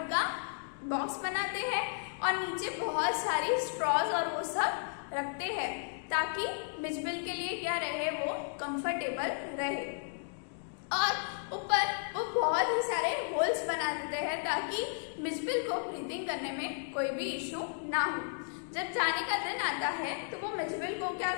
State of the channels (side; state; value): right; silent; digital silence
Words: का बॉक्स बनाते हैं और नीचे बहुत सारी स्ट्रॉज और वो सब रखते हैं ताकि मिचबिल के लिए क्या रहे, वो कंफर्टेबल रहे। और ऊपर वो बहुत ही सारे होल्स बना देते हैं ताकि मिचबिल को ब्रीथिंग करने में कोई भी इशू ना हो। जब जाने का दिन आता है तो वो मिचबिल को क्या